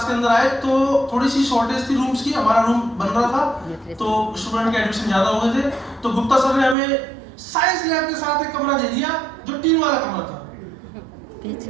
के अंदर आए तो थोड़ी सी शॉर्टेज थी रूम्स की, हमारा रूम बन रहा था तो स्टूडेंट के एडमिशन ज्यादा हो गए थे, तो गुप्ता सर ने हमें साइंस लैब के साथ एक कमरा दे दिया जो टीन वाला कमरा था।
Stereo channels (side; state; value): left; drops out; at 6.8 s